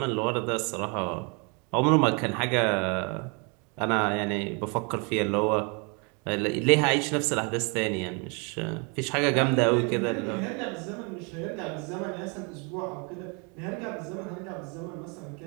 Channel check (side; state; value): left; quieter; 33.6 dB